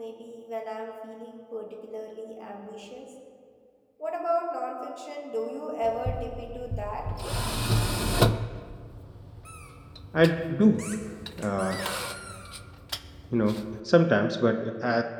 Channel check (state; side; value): identical; both; correlation 1.00